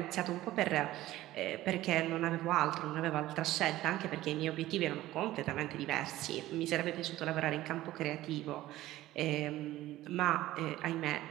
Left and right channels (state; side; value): quieter; left; 15.7 dB